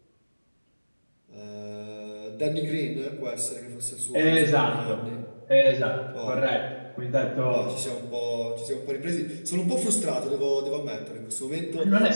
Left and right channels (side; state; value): both; inverted; correlation -1.00